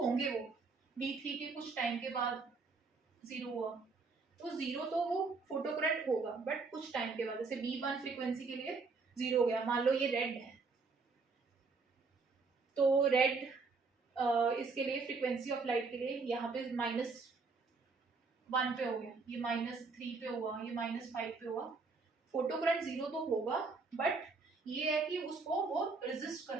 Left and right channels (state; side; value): quieter; left; 4.3 dB